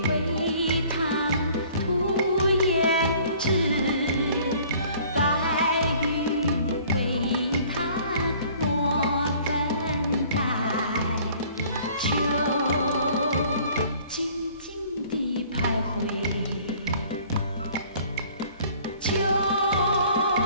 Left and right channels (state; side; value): inverted; both; correlation -0.53